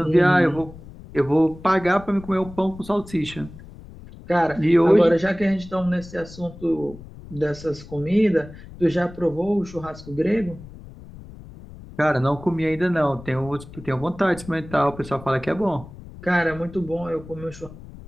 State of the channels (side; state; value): left; noise; rumble, 17 dB below the sound